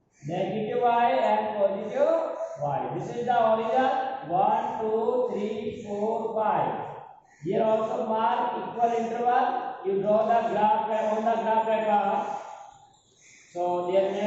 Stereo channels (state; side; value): identical; both; correlation 1.00